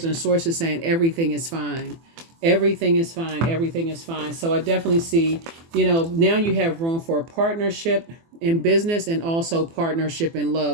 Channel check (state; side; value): late; left; 24 ms